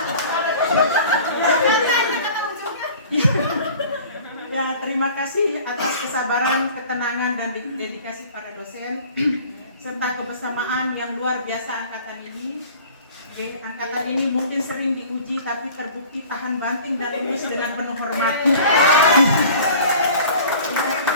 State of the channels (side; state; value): both; inverted; correlation -0.45